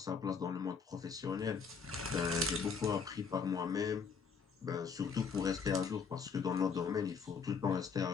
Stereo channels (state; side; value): quieter; right; 5.8 dB